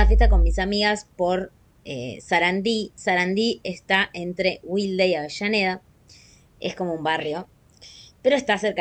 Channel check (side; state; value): both; identical; correlation 1.00